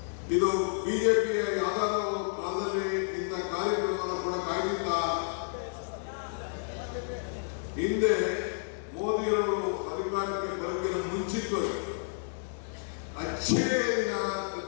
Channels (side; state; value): right; silent; digital silence